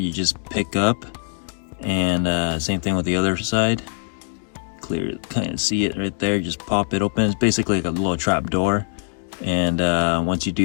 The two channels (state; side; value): silent; right; digital silence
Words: you just pick up, and same thing with the other side. Clear, kind of see it right there, just pop it open. It's basically like a little trap door, and once you